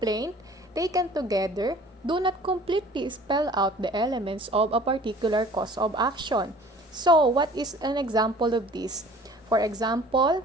taken together do not completely spell out the elements of a particular cause of action. So what is an example of this? For example,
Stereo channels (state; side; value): normal; both; correlation 0.49